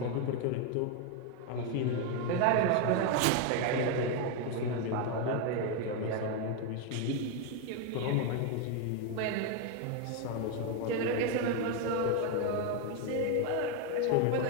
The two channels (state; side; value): different; both; correlation 0.01